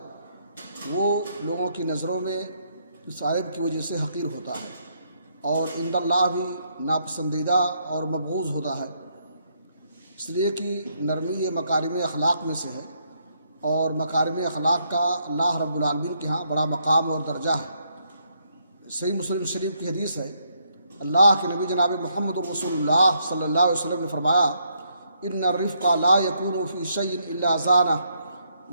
وہ لوگوں کی نظروں میں اس عیب کی وجہ سے حقیر ہوتا ہے، اور عند اللہ بھی ناپسندیدہ اور مبغوض ہوتا ہے۔ اس لیے کہ نرمی یہ مکارم اخلاق میں سے ہے، اور مکارم اخلاق کا اللہ رب العالمین کے ہاں بڑا مقام اور درجہ ہے۔ صحیح مسلم شریف کی حدیث ہے، اللہ کے نبی جناب محمد رسول اللہ صلی اللہ علیہ وسلم نے فرمایا، ان الرفق لا يكون في شيء الا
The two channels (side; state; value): both; inverted; correlation -0.74